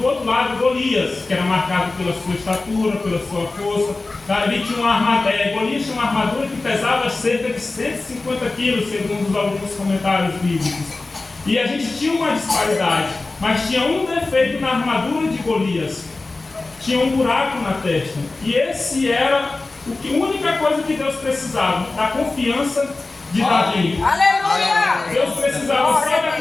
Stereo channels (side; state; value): right; quieter; 3.4 dB